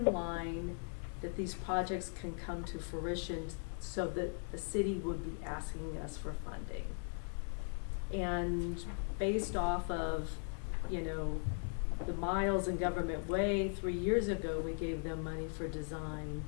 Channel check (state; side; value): silent; right; 52 dB below the other